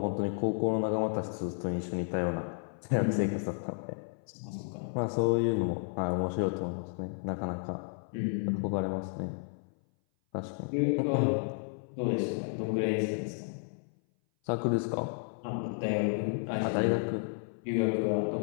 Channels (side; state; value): right; silent; 56 dB below the other